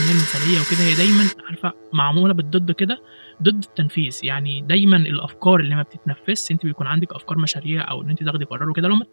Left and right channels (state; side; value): inverted; both; correlation -1.00